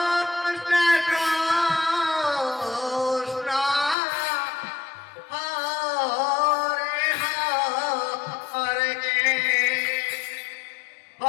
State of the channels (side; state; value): right; drops out; at 4.0 s